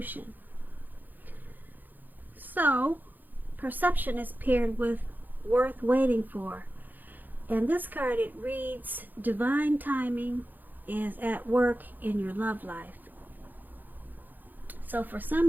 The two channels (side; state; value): left; late; 0.086 ms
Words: So, perception is paired with worth waiting for. And this card, it reads, divine timing is at work in your love life. So for